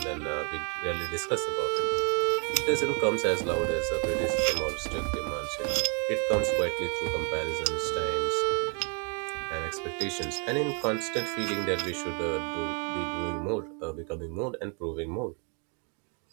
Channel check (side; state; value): left; quieter; 37.6 dB